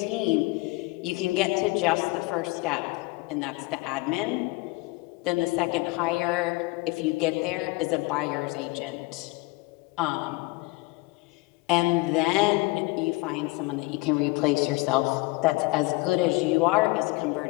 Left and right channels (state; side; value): quieter; right; 23.4 dB